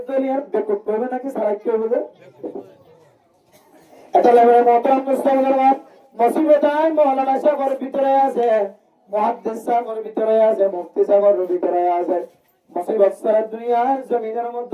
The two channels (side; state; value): both; identical; correlation 1.00